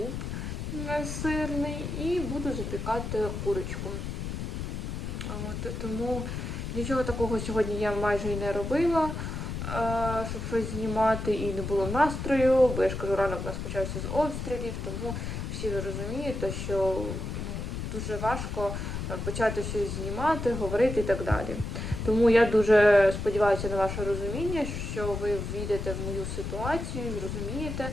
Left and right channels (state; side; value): noise; left; rumble, 5 dB below the sound